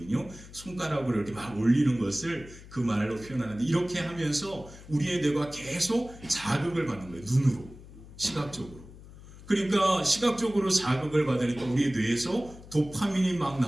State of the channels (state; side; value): noise; left; hum, 18 dB below the sound